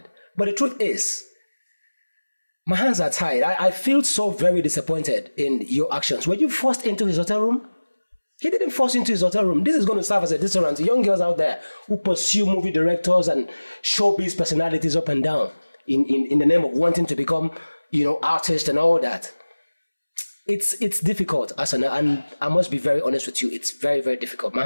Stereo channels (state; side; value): inverted; both; correlation -1.00